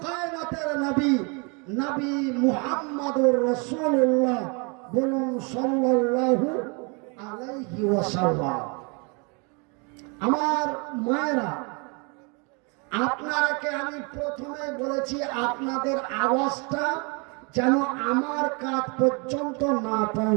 কায়নাতের নবী, নবী মুহাম্মদুর রাসূলুল্লাহ, বলুন সাল্লাল্লাহু আলাইহি ওয়াসাল্লাম। আমার মায়েরা, আপনারাকে আমি প্রথমে বলেছি আপনাদের আওয়াজটা যেন আমার কাছ পর্যন্ত না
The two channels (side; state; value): left; quieter; 32.9 dB